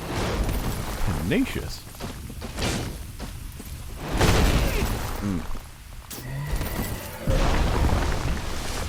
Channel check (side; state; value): both; identical; correlation 1.00